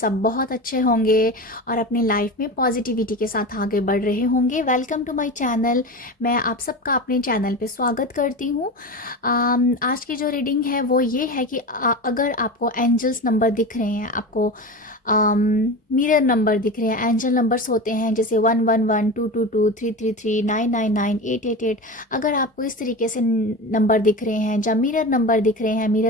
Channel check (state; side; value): normal; both; correlation 0.26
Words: बहुत अच्छे होंगे और अपनी लाइफ में पॉजिटिविटी के साथ आगे बढ़ रहे होंगे। Welcome to my channel. मैं आप सबका अपने चैनल पे स्वागत करती हूँ। आज की जो रीडिंग है वो ये है कि अगर आपको एंजल्स नंबर दिख रहे हैं, आपको मिरर नंबर दिख रहे हैं, एंजल नंबर्स होते हैं जैसे 111, 222, 333, 999, 888। अगर आपको इस तरीके से नंबर दिख रहे हैं या मिरर नंबर दिख रहे हैं,